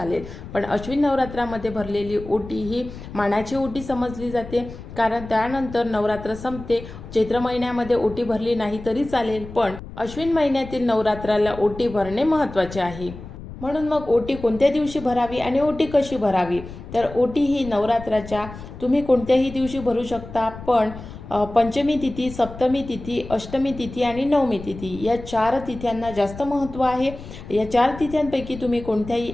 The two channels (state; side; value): noise; left; rumble, 13 dB below the sound